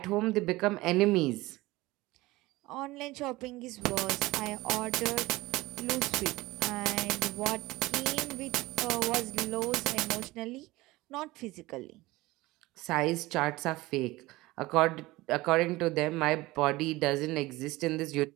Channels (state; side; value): quieter; left; 19.8 dB